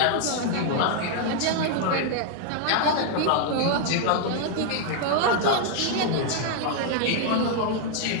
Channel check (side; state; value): both; different; correlation 0.00